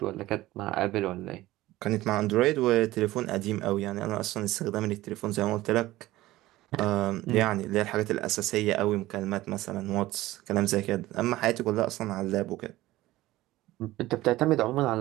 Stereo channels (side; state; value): left; quieter; 17.0 dB